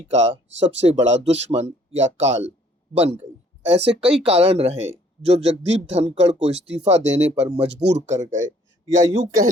का सबसे बड़ा दुश्मन या काल बन गई। ऐसे कई कारण रहे जो जगदीप धनखड़ को इस्तीफा देने पर मजबूर कर गए, या यूं कह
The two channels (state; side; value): normal; both; correlation 0.60